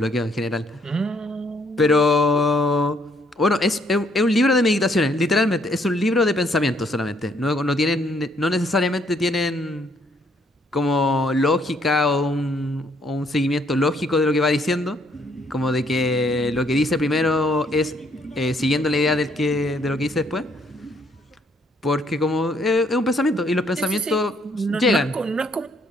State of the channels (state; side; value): normal; both; correlation 0.68